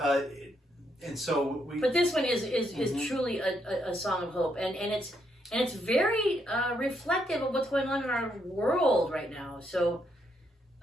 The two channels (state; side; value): normal; both; correlation 0.76